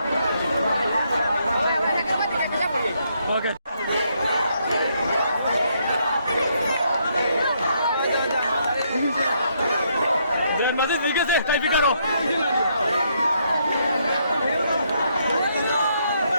Okay. Messi sigue se calificaron.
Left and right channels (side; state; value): both; inverted; correlation -0.74